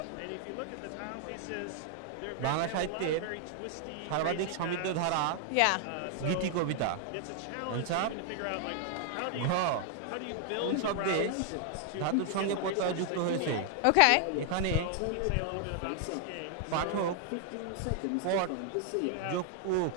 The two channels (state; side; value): different; both; correlation 0.00